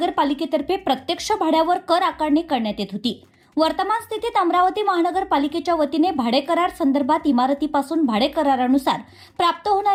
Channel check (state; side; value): identical; both; correlation 1.00